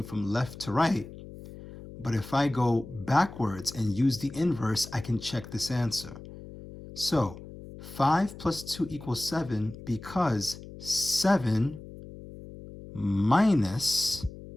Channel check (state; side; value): noise; left; hum, 15 dB below the sound